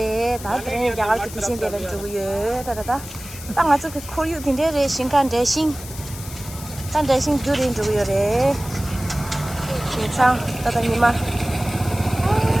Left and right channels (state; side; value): noise; left; hiss, 14 dB below the sound